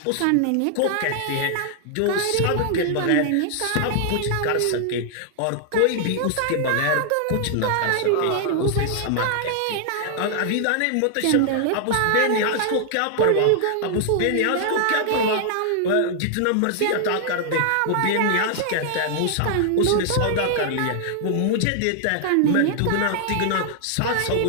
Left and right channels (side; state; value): both; different; correlation 0.00